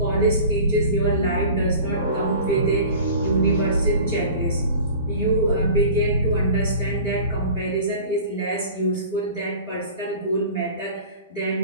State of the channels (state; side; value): inverted; both; correlation -0.41